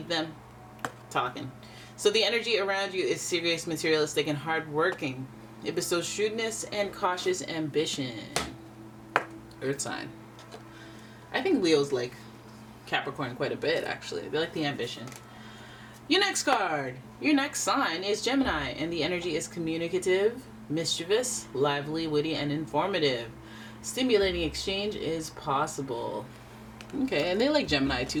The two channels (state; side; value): identical; both; correlation 1.00